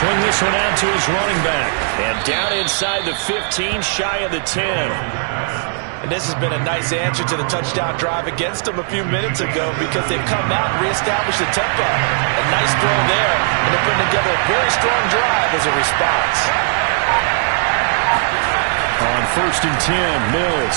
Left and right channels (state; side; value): silent; left; digital silence